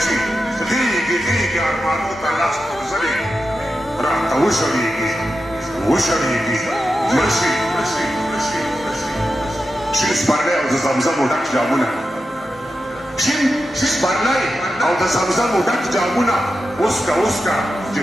شي غېږې غېږې ارمانو ته لاس غورځوي راته وشړېږي وشړېږي مړ شي شین سپرلی او د زمزمو ډک جامونه شین سپرلی او د زمزمو ډک جامونه اوسکه اوسکه چې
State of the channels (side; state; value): both; normal; correlation 0.90